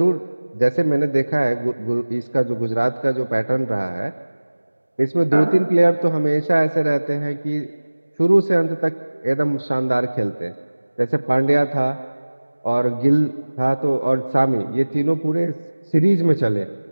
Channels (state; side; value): inverted; both; correlation -1.00